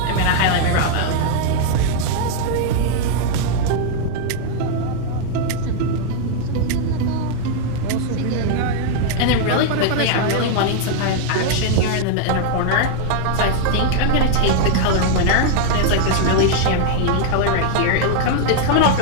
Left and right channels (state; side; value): different; both; correlation 0.00